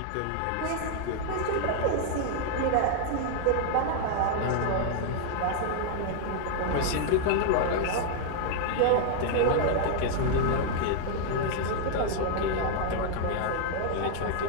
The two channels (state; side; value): different; both; correlation 0.00